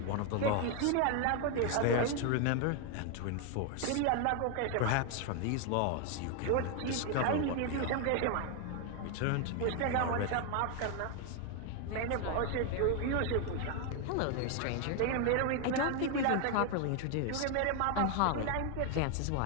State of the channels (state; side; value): different; both; correlation 0.01